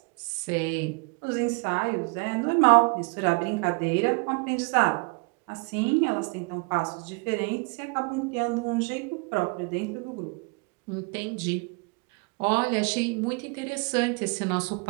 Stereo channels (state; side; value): quieter; left; 31.7 dB